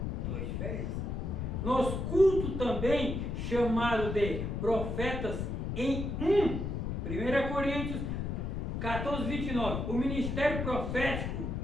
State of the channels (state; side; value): noise; left; rumble, 3 dB below the sound